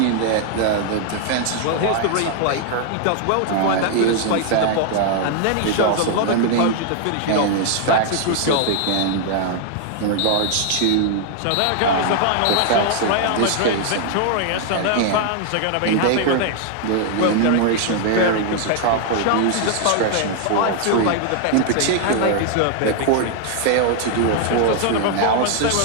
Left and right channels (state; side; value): different; both; correlation 0.00